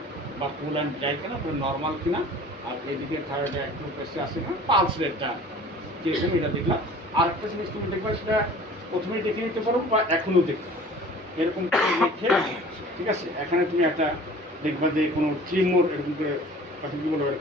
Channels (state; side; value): normal; both; correlation 0.46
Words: বা কুল অ্যান্ড ড্রাই কিনা, নর্মাল কিনা, আর এদিকে থাইরয়েডে একটু বেশি আসে কিনা, পালস রেটটা কীরকম এটা দেখলাম। আর একটা জিনিস তুমি দেখবা, সেটা প্রথমেই দেখে নিতে পারো বা এখনও দেখতে পারো, এরকম করে দেখে, ঠিক আছে? এখানে তুমি একটা দেখবা যে কোনো ট্রিমোর এরকম করে কী বলবো